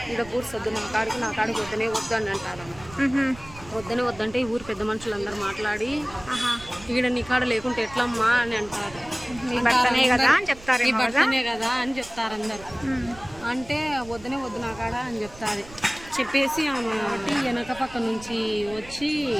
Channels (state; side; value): noise; right; rumble, 19 dB below the sound